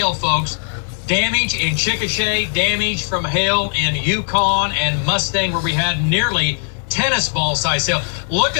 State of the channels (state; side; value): silent; right; 66 dB below the other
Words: folks. Damage in Chickasha, damage from hail in Yukon and Mustang, where we had nearly tennis ball size hail. Look